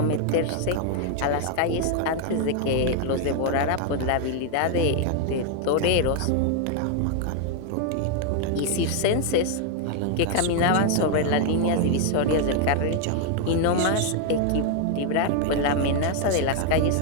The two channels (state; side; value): different; both; correlation 0.00